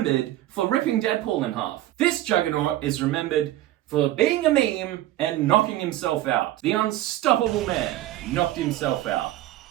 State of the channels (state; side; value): quieter; left; 14.8 dB